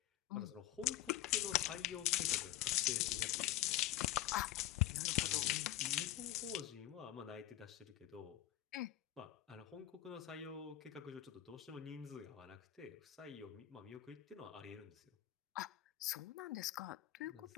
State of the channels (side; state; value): right; quieter; 14.0 dB